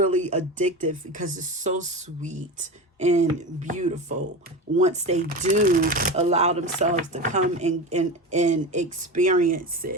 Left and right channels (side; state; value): both; normal; correlation 0.25